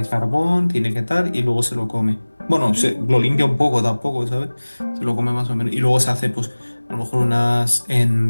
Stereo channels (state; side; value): inverted; both; correlation -1.00